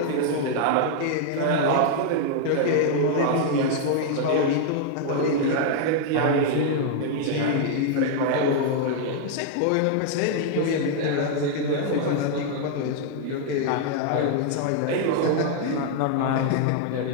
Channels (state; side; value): different; both; correlation 0.00